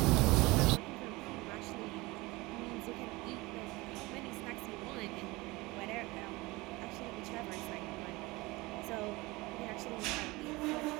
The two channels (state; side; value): quieter; left; 22.3 dB